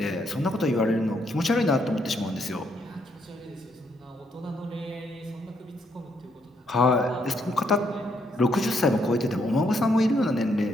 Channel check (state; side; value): normal; both; correlation 0.74